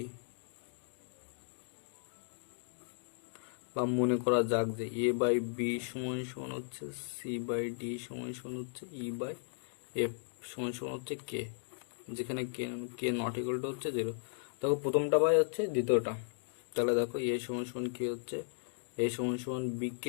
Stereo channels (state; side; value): silent; right; digital silence